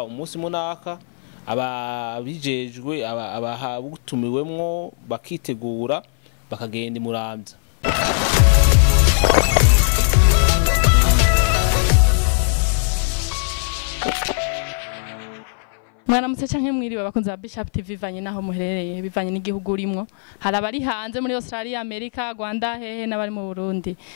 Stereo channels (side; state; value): right; silent; 59 dB below the other